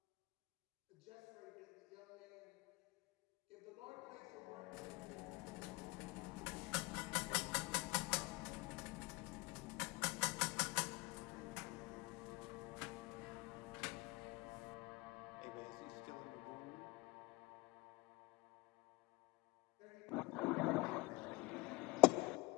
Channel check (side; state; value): right; quieter; 24.0 dB